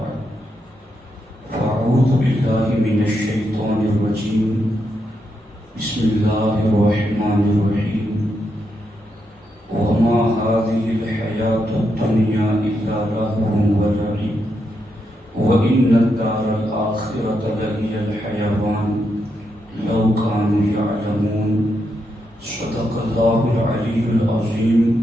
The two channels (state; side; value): normal; both; correlation 0.82